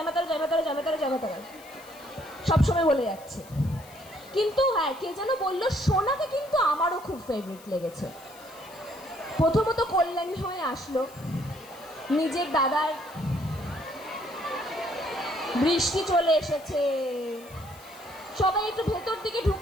সবসময় বলে যাচ্ছে। কিন্তু হ্যাঁ, কে যেন বললো সোনাকে কিন্তু আমারও খুব ফেভারিট লেগেছে। প্রথমত কল্যাণী হয়ে আসলো, নিজের দাদার বৃষ্টি চলে এসেছে, সবাই একটু ভেতর দিকে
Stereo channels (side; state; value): left; noise; hiss, 22 dB below the sound